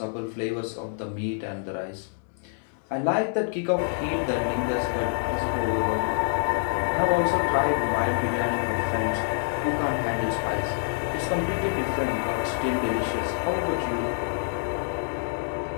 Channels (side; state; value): right; silent; digital silence